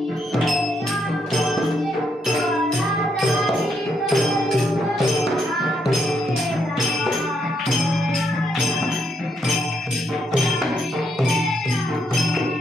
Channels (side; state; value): both; normal; correlation 0.77